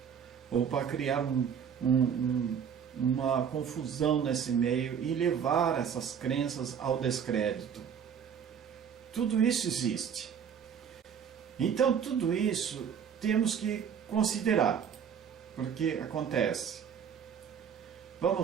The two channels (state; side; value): quieter; left; 7.6 dB